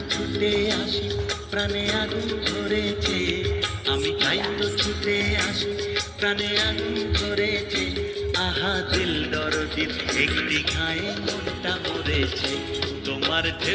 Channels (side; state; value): both; identical; correlation 1.00